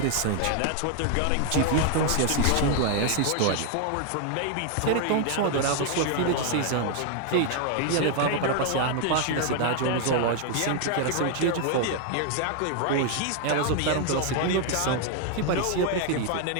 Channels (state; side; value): different; both; correlation 0.00